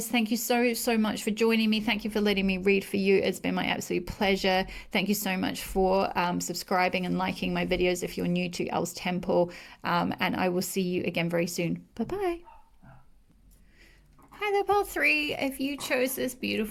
thank you so much for joining me. Thank you for letting me read for you. It's been my absolute pleasure. Thank you so much for subscribing and liking my videos if you're new to Elle's Temple. And I will see you again very soon. Bye-bye. Hi there, pile three. If you chose this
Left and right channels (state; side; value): identical; both; correlation 1.00